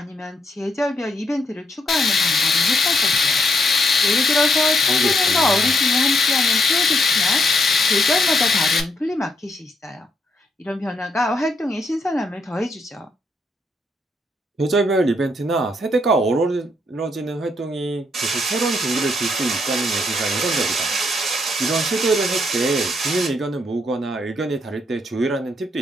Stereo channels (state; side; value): normal; both; correlation 0.75